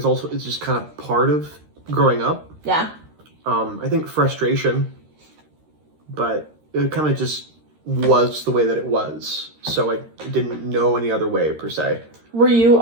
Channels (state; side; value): late; left; 13 ms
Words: just kind of part of growing up. Yeah. I think frustration, but it kind of just was the way that it was. So I didn't know any other way per se. Were you